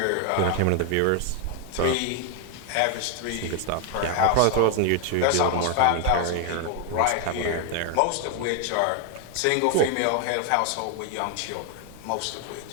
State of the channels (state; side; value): different; both; correlation 0.01